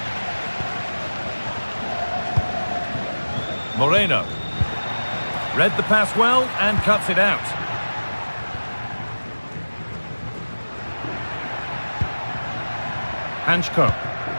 Moreno. Read the pass well and cuts it out. Hanchko.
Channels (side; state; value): both; inverted; correlation -1.00